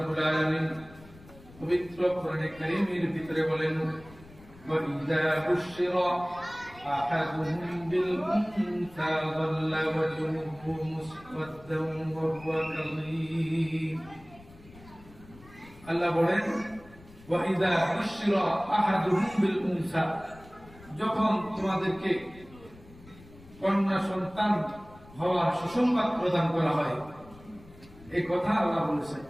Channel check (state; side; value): noise; left; rumble, 22 dB below the sound